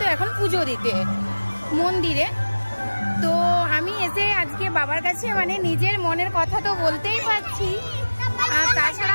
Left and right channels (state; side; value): inverted; both; correlation -1.00